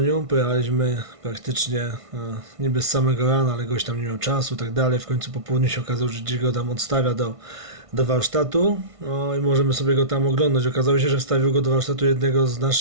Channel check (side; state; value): left; late; 1.5 ms